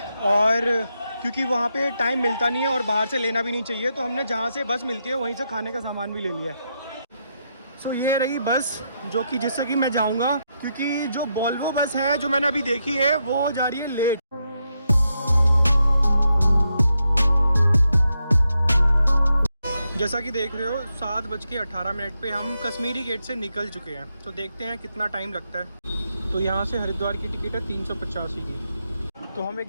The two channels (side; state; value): both; inverted; correlation -0.83